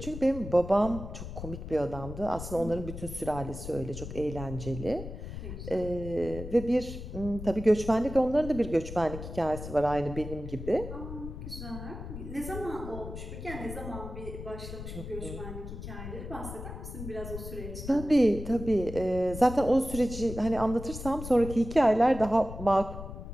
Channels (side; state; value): left; noise; rumble, 9 dB below the sound